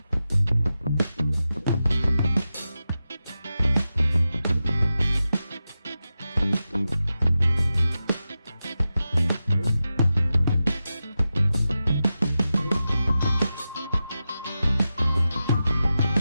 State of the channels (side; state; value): both; inverted; correlation -0.92